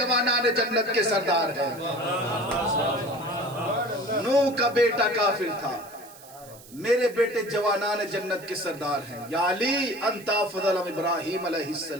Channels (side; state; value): right; noise; hiss, 20 dB below the sound